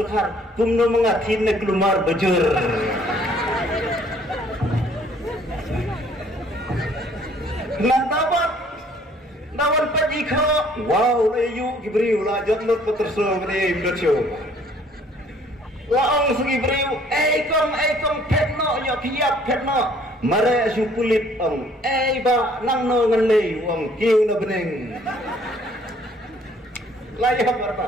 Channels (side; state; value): both; normal; correlation 0.59